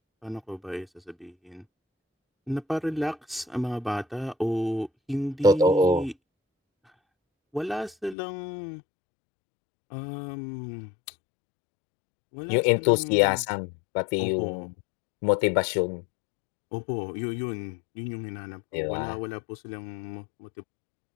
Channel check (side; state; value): right; drops out; at 8.2 s